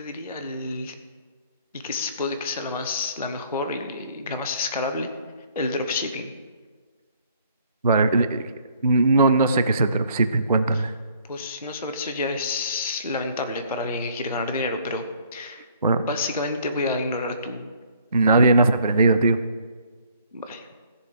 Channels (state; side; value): inverted; both; correlation -0.61